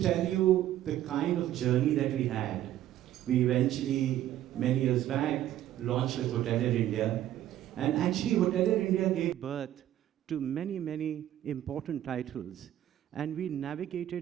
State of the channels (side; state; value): left; quieter; 12.5 dB